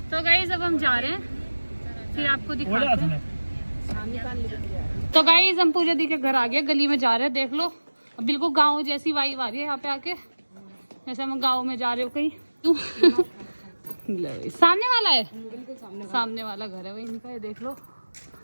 तो गाइस अब हम जा रहे हैं, फिर आपको दिखाते हैं। तो गाइस हम पूजा दी के घर आ गए, गली में जा रहे हैं, देख लो बिल्कुल गांव जैसी वाइब आ रही है यहाँ पे आके, जैसे हम गांव में जा रहे हो कहीं। सामने वाला है, सामने वाला घर है वही इनका, ये देख लो।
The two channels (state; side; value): inverted; both; correlation -1.00